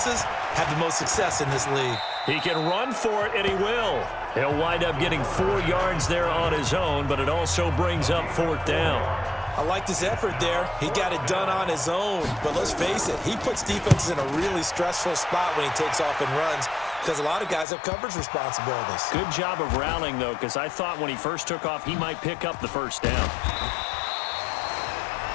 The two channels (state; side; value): drops out; right; at 17.7 s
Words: have the most success in this league. He can run for it, and he will. He'll wind up getting 4 yards there on his own, but it also brings up 4th down. I liked his effort there. He got it done on his own. But let's face it, he puts defenses in a really stressful spot when he takes off and runs because a lot of guys have coverage responsibilities. Good job of rallying, though, because I thought when he first took off, he might pick up the first down.